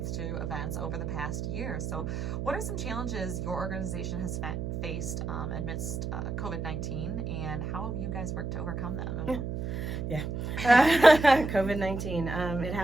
to events over the past year. So what are some challenges your organization has faced amidst COVID-19, and how have you guys worked to overcome them? Yeah. COVID-19. It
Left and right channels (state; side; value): noise; right; hum, 3 dB below the sound